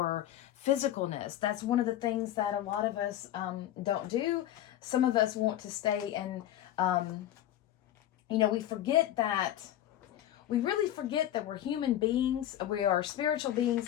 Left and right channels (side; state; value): right; quieter; 12.4 dB